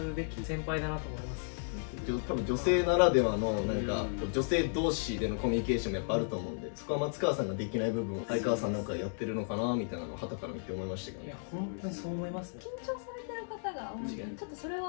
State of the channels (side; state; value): right; silent; digital silence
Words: べき先輩だなと思います。多分女性ならではのなんか女性同士でのコミュニケーションもやっぱあると思うんで、そこは松川さんができない部分を相川さんなんかやってるのかなみたいなのを傍から見て思いましたけどね。いや本当にそう思いますね。緊張されてる方が多いんで、ちょっとそれ